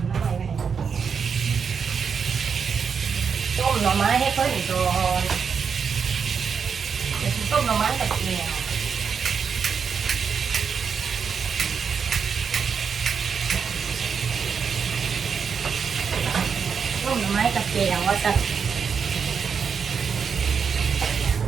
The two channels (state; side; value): quieter; left; 6.3 dB